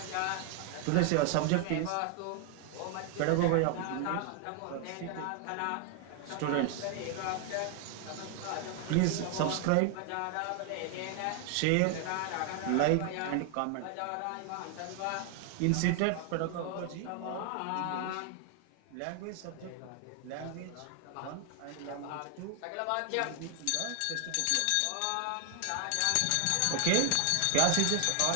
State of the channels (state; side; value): different; both; correlation 0.00